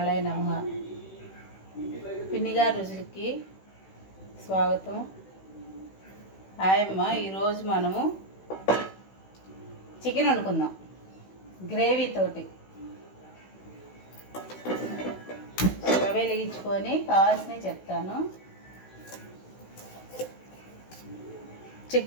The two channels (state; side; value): late; right; 16 ms